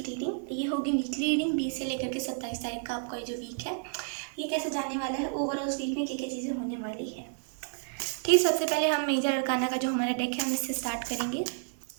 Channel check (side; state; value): left; silent; 57 dB below the other